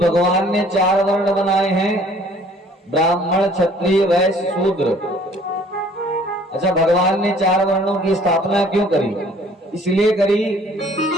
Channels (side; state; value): both; normal; correlation 0.56